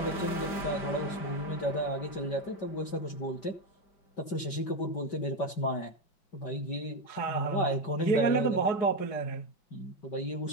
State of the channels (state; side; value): late; right; 5.2 ms